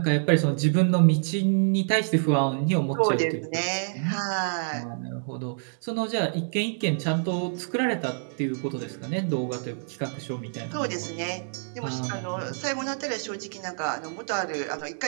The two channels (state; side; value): silent; left; digital silence